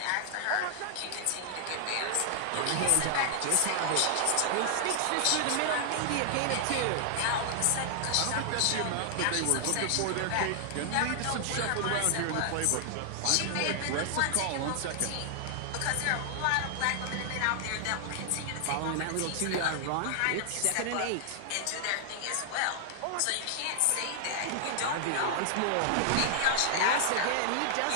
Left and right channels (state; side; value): different; both; correlation 0.00